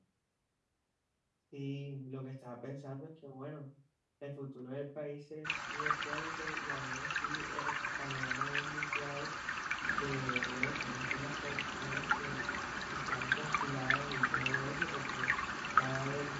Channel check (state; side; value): identical; both; correlation 1.00